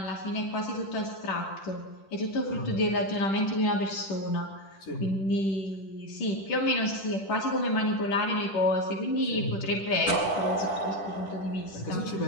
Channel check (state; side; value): late; right; 10 ms